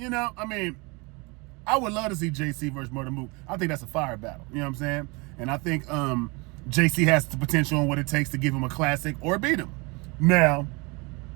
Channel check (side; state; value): left; quieter; 27.9 dB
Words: I would love to see JC versus Murder Mook. I think that's a fire battle. You know what I'm saying? And I think JC has the potential and what it takes to give him a classic or beat him. Now,